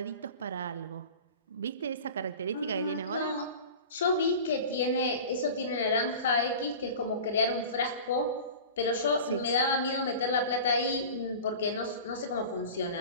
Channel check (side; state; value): both; inverted; correlation -0.36